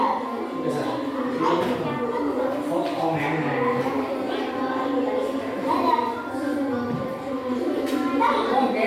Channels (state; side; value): identical; both; correlation 1.00